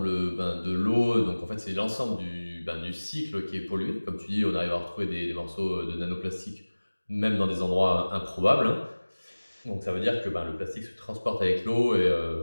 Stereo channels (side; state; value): both; inverted; correlation -1.00